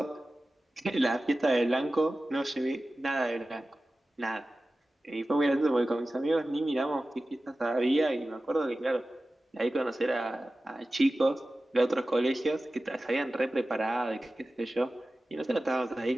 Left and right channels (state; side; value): normal; both; correlation 0.95